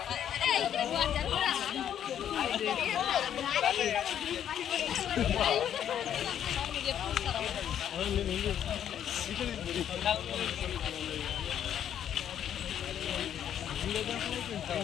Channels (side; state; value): right; quieter; 9.8 dB